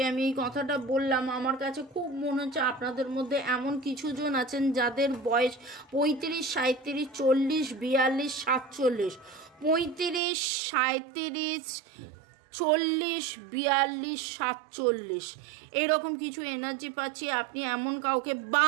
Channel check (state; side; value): drops out; left; at 10.2 s